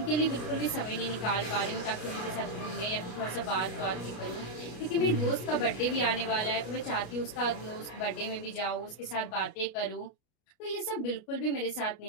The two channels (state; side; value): late; right; 33 ms